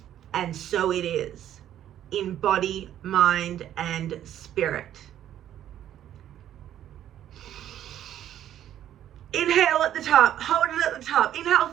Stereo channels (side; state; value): left; quieter; 11.3 dB